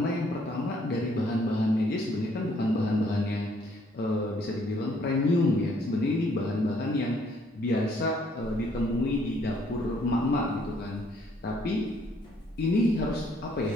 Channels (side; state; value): both; normal; correlation 0.65